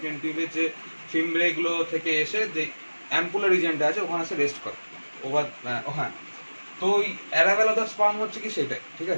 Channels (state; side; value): inverted; both; correlation -1.00